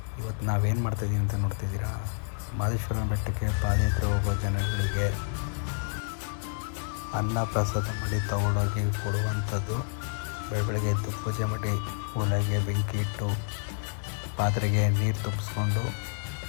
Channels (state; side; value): silent; right; 59 dB below the other